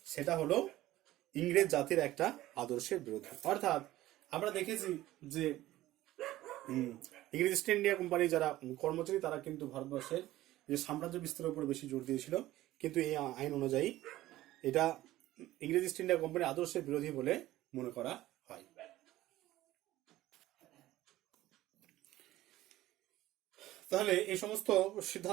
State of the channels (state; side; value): quieter; left; 15.7 dB